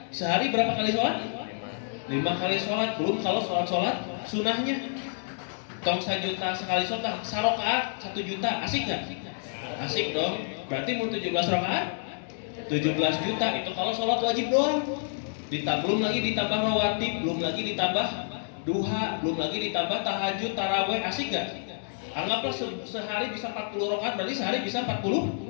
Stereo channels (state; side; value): silent; right; digital silence